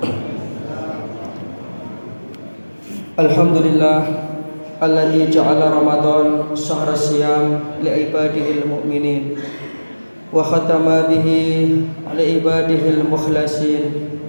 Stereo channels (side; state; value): both; inverted; correlation -1.00